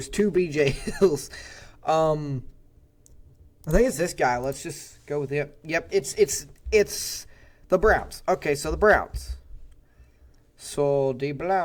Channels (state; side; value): identical; both; correlation 1.00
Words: 2 BJ Hills. I think it's this guy. Let's just go with him. Yep, it's the Browns. Okay, so the Browns. So the